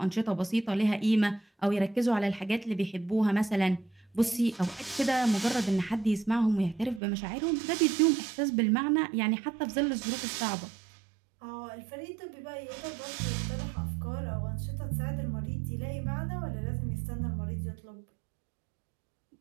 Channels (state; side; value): drops out; left; at 7.0 s